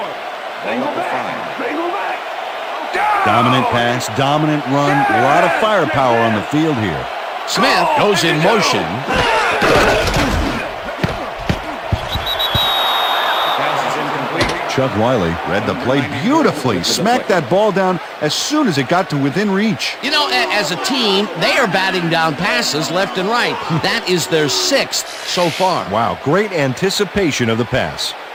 Ball up to 5. Dominant pass, dominant run, a lot of firepower on the field here. Smith goes in motion. Chuck Wiley read the play beautifully, smacked that ball down as soon as it got to within reach. You know, as a team, they are batting down passes left and right. That is their 6th so far. Wow, great anticipation of the pass.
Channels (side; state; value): both; identical; correlation 1.00